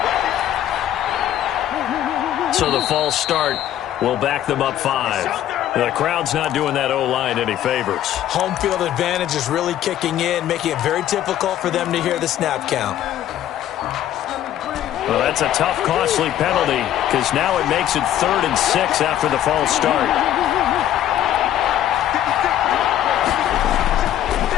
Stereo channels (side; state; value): right; quieter; 11.8 dB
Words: So the false start will back them up 5. The crowd's not doing that O-line any favors. Home field advantage is really kicking in, making it very difficult for them to hear the snap count. Well, that's a tough, costly penalty because now it makes it 3rd and 6 after the false start.